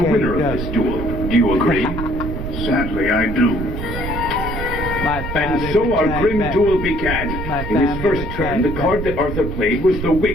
winner of this duel. Do you agree? Sadly, I do. And so our grim duel began. In his first turn, the card that Arthur played was the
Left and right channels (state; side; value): noise; right; rumble, 6 dB below the sound